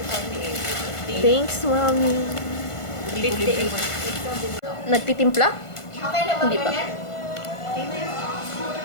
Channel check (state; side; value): late; right; 1.5 ms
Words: Thanks, mommy. Nagtitimpla? Hindi pa.